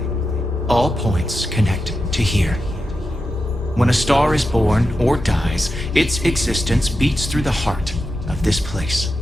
All points connect to here. When a star is born or dies, its existence beats through the heart of this place.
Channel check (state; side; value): normal; both; correlation 0.89